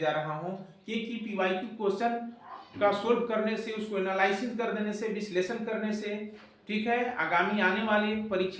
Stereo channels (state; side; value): identical; both; correlation 1.00